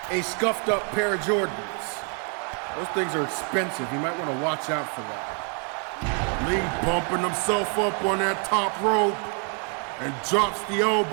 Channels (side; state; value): left; quieter; 39.7 dB